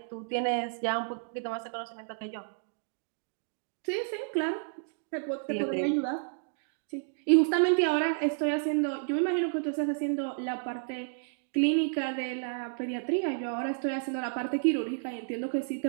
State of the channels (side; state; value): left; silent; digital silence